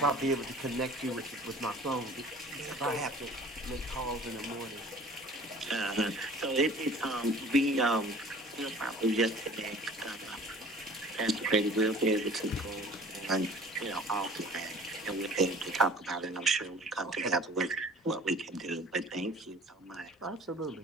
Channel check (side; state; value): both; normal; correlation 0.47